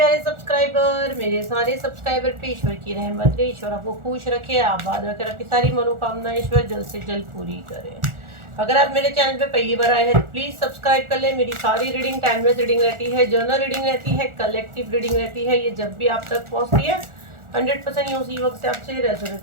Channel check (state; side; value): late; left; 1.4 ms